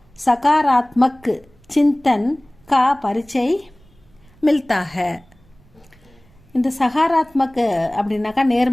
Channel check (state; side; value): noise; right; rumble, 30 dB below the sound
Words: சகாராத்மக் சிந்தன் கா பரிச்சை மில்தாக. இந்த சகாராத்மக் அப்படின்னாக்கா